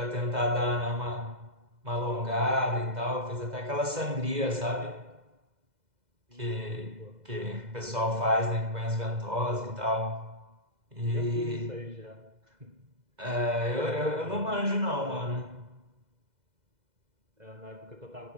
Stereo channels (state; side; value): late; left; 2.0 ms